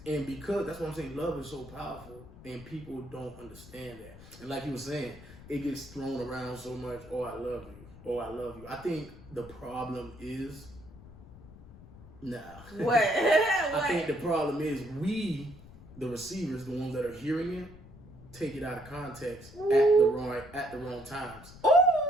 And because that's what I'm saying, love is so powerful and people don't understand that. And like you were saying, it gets thrown around so much, I love you. I love you. I think the problem is What? I think the problem is we, the receivers, the ones that are hearing it, take it out of context at the wrong times. Ooh.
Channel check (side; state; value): left; noise; rumble, 18 dB below the sound